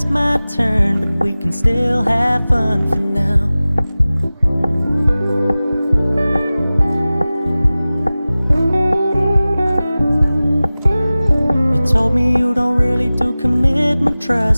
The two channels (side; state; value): both; inverted; correlation -0.97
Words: my turn, but we can still have fun for now. You told me you don't really do commitment,